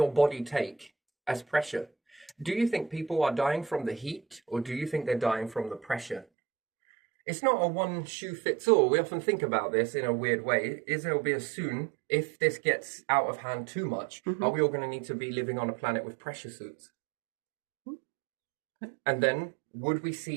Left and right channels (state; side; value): drops out; left; at 6.2 s